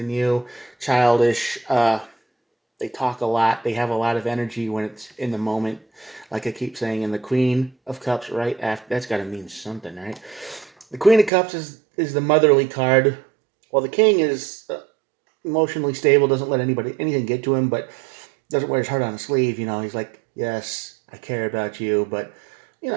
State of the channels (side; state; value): left; drops out; at 11.3 s